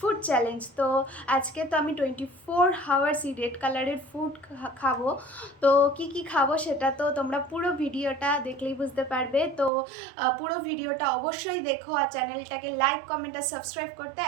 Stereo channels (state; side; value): drops out; left; at 9.7 s